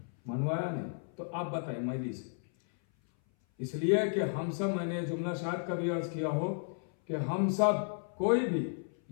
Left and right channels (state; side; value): silent; right; 56 dB below the other